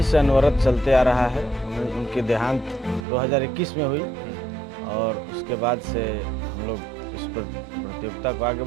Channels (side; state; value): left; drops out; at 3.1 s